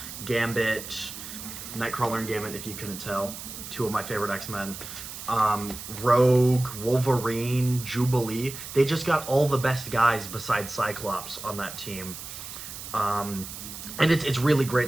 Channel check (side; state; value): right; noise; hiss, 11 dB below the sound